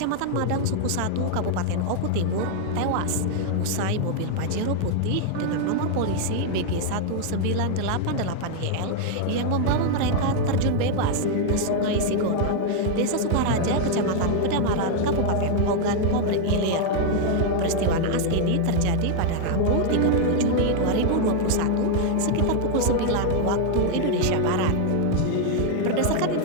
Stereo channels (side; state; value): both; different; correlation 0.00